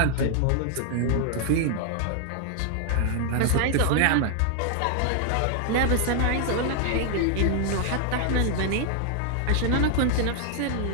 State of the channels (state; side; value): different; both; correlation 0.00